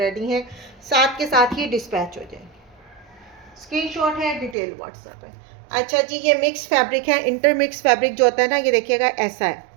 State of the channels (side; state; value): left; drops out; at 4.5 s